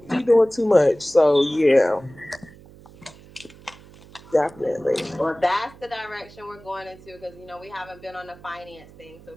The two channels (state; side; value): noise; right; hum, 22 dB below the sound